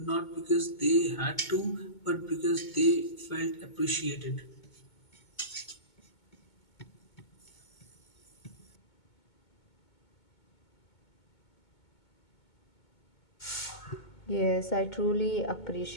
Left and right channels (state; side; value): late; right; 2.2 ms